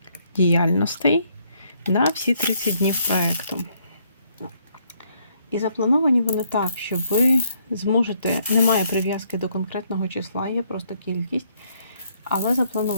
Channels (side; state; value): both; inverted; correlation -0.70